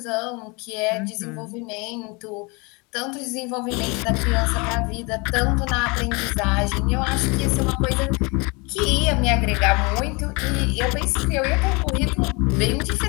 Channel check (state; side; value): quieter; right; 28.7 dB